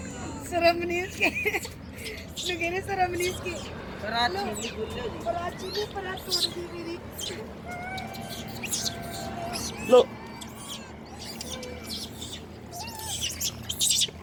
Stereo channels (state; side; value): identical; both; correlation 1.00